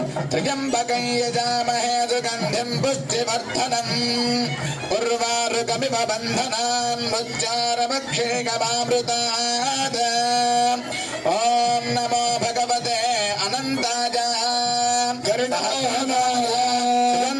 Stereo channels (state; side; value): identical; both; correlation 1.00